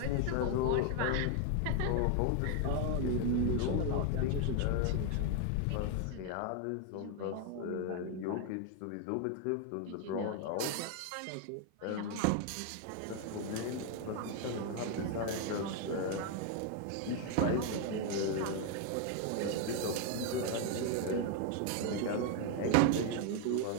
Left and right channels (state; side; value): different; both; correlation 0.01